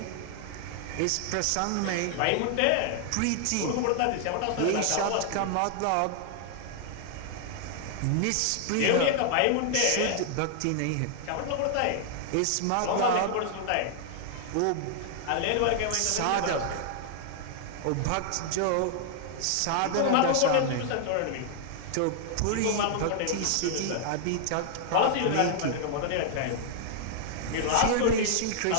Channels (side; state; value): both; different; correlation 0.00